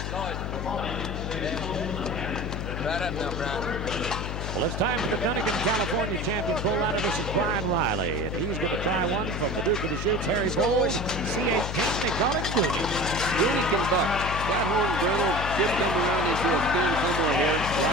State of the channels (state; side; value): noise; left; hum, 4 dB below the sound